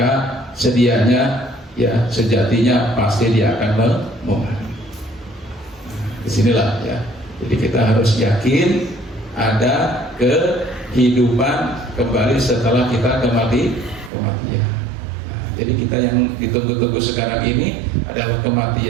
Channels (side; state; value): left; drops out; at 14.1 s